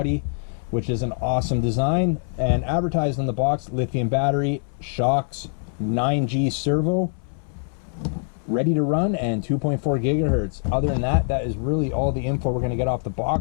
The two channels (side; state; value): right; silent; 63 dB below the other